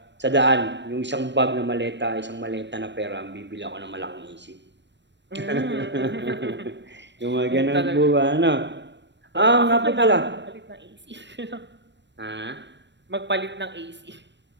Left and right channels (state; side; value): late; left; 0.52 ms